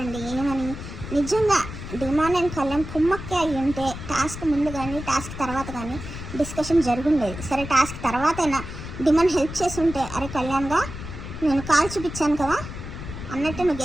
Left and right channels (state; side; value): noise; left; rumble, 10 dB below the sound